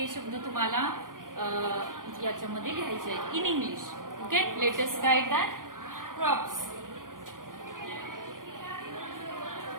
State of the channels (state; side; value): late; left; 0.90 ms